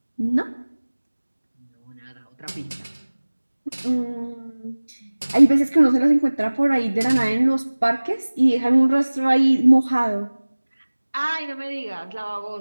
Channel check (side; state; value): both; inverted; correlation -1.00